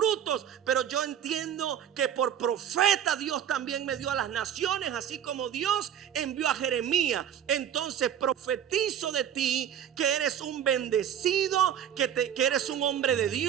pero yo entiendo que por profeta Dios también me dio a las naciones, así como Dios envió a Jeremías. Entonces profetizo de ti que eres un bendecido, que eres un hombre de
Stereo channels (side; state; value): left; quieter; 9.5 dB